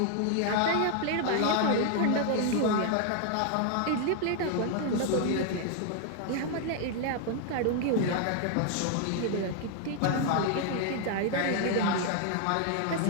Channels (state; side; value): different; both; correlation 0.00